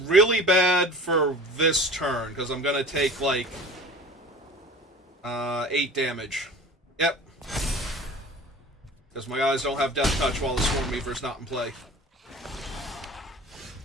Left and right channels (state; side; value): normal; both; correlation 0.40